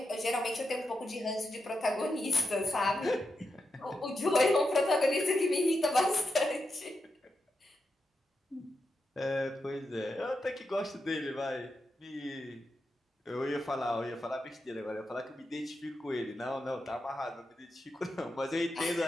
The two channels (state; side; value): normal; both; correlation 0.86